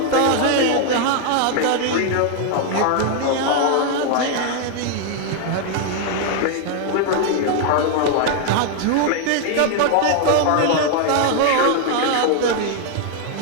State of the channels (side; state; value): both; different; correlation 0.00